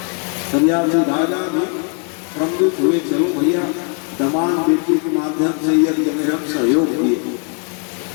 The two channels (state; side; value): quieter; right; 39.3 dB